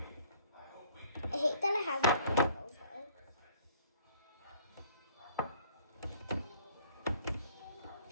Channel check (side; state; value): both; inverted; correlation -0.57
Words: I hate that it has rainbows though.